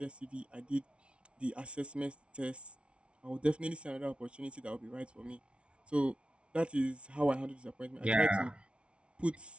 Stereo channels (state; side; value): late; left; 0.059 ms